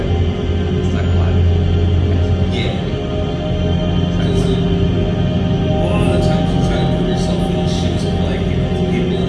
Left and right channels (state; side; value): identical; both; correlation 1.00